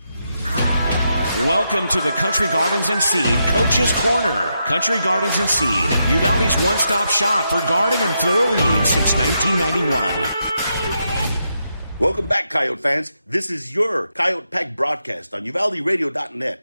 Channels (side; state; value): both; inverted; correlation -0.83